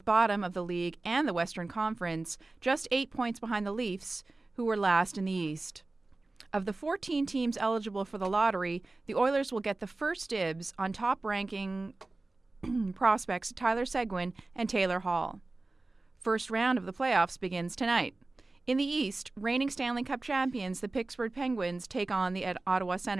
bottom of the league and the Western Conference, just 8 points behind the Leafs, who were last in the East. Of the 14 teams eligible for the lottery, the Oilers will get the first dibs on top-ranking prospects Tyler Seguin and Taylor Hall. First round of the playoffs begins tonight. In the East, reigning Stanley Cup champions, the Pittsburgh Penguins, take on the Ottawa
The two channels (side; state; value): left; quieter; 3.2 dB